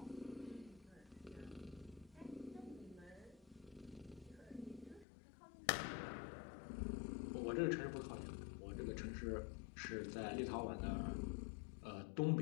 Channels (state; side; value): drops out; right; at 5.1 s